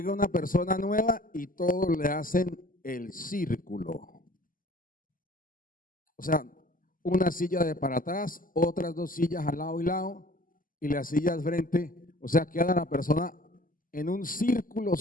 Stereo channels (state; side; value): late; right; 0.41 ms